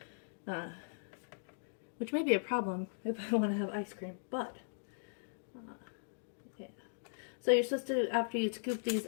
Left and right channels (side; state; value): right; silent; digital silence